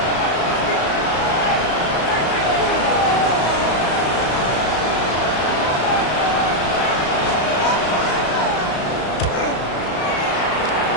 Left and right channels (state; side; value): late; right; 34 ms